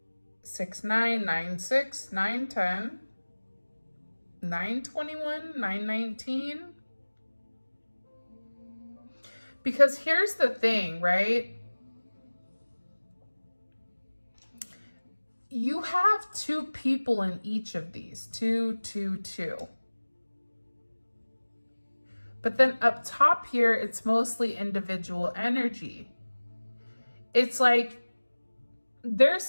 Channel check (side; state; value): both; inverted; correlation -1.00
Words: 6 9, 9 6, 9 10, 9 21, 9 19. Because here's the thing, right? You have two people in each of these, 2, 2, 2. But then up top here, it's mostly individual energy. It's like there's